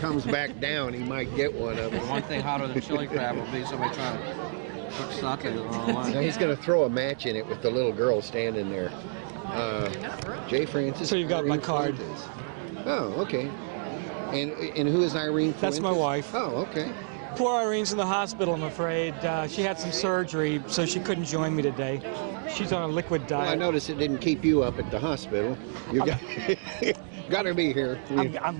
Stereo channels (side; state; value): left; silent; digital silence